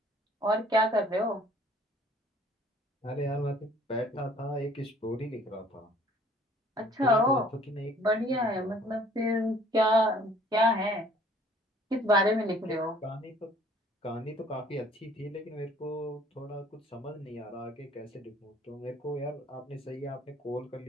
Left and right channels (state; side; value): normal; both; correlation 0.56